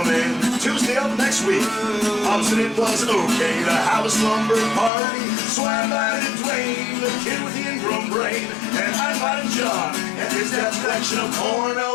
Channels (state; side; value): drops out; right; at 4.9 s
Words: Tuesday of next week. Opposite it was okay to have a slumber party. So I invited Dwayne, the kid with the ingrown brain. train, and I'm riding John and his dad's collection of